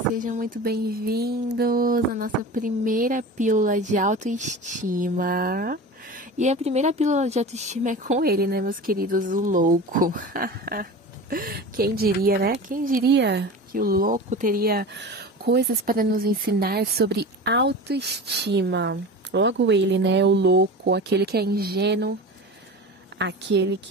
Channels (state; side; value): normal; both; correlation 0.32